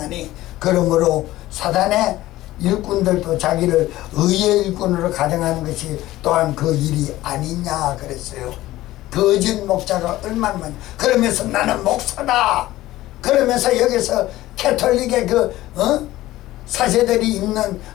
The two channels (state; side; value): quieter; right; 16.2 dB